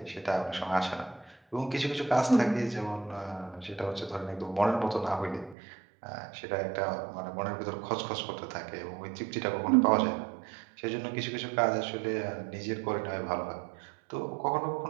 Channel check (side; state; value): left; drops out; at 5.6 s